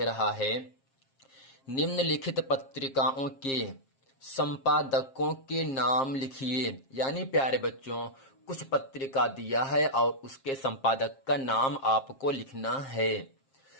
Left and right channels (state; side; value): late; right; 7.5 ms